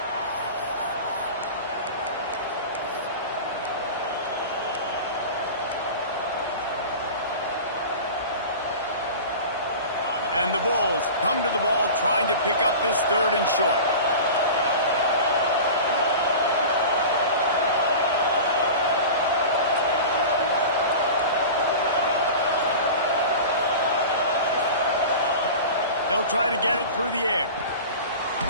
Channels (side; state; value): both; inverted; correlation -0.34